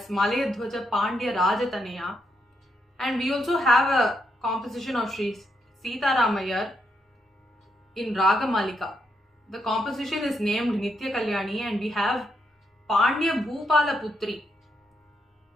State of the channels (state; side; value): normal; both; correlation 0.79